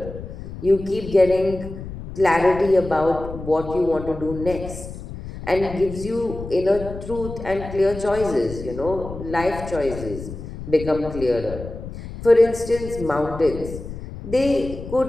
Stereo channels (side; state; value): left; noise; rumble, 11 dB below the sound